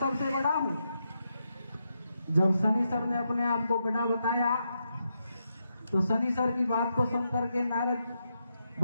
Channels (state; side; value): inverted; both; correlation -0.84